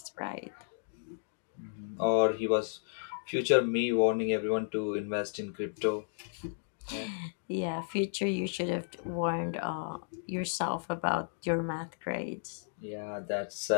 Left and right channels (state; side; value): silent; right; digital silence